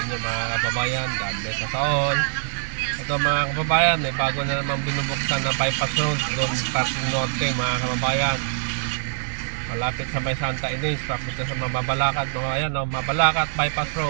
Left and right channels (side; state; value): left; silent; digital silence